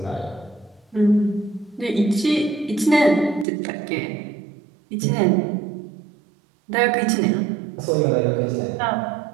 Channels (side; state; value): left; drops out; at 3.5 s